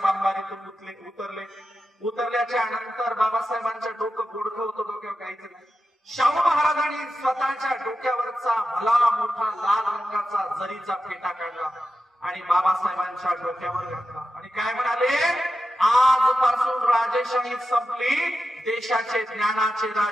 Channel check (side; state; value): both; normal; correlation 0.91